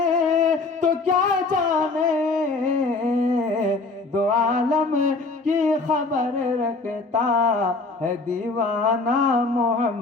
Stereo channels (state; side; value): quieter; right; 3.7 dB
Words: تو کیا جانے، دو عالم کی خبر رکھتا ہے دیوانہ